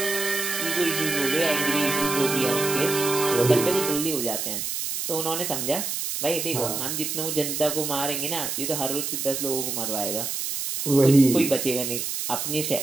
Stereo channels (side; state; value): right; noise; hiss, 3 dB below the sound